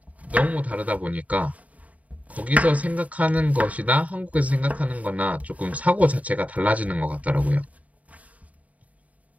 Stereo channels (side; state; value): left; late; 0.070 ms